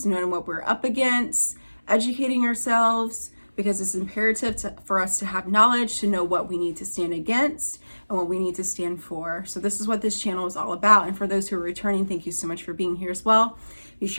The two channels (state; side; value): inverted; both; correlation -1.00